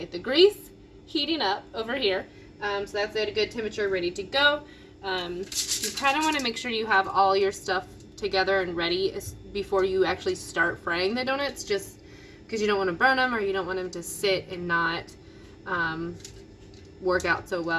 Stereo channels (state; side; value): identical; both; correlation 1.00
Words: The grease heating up over here. So that's at a good temperature, ready to go. You kind of want to make sure you have all your stuff together and ready before you actually start frying the donuts, just because you don't want to burn them or you don't want them to sit and not work out so